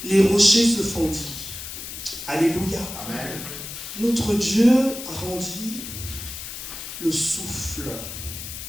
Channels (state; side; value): noise; left; hiss, 9 dB below the sound